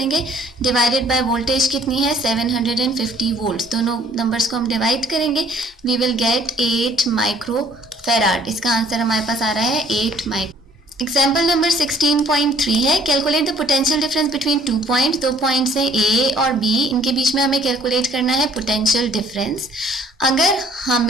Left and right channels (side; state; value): both; normal; correlation 0.59